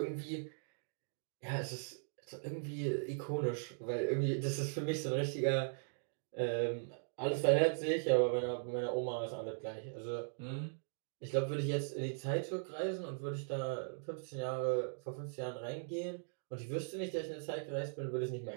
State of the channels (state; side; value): silent; left; digital silence